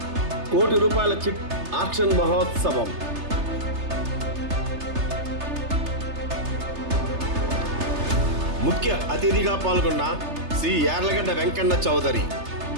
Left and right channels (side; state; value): left; late; 3.3 ms